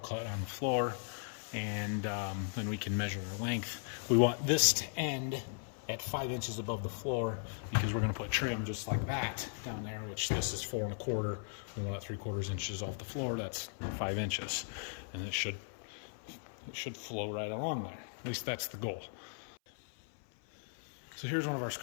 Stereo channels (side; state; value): right; silent; 53 dB below the other